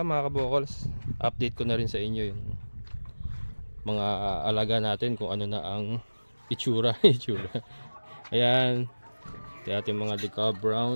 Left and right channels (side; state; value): both; inverted; correlation -1.00